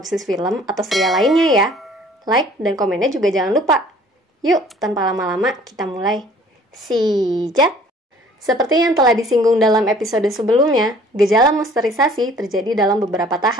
film atau serial lainnya ya. Like dan komennya juga jangan lupa. Yuk, tanpa lama-lama kita mulai. Sijat! Seperti yang telah disinggung dalam episode sebelumnya, gejala monsterisasi terjadi dalam beberapa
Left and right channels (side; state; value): both; normal; correlation 0.53